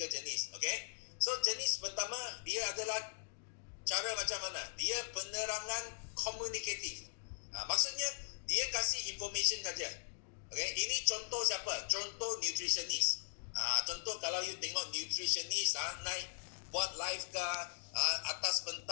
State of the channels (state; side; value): silent; right; digital silence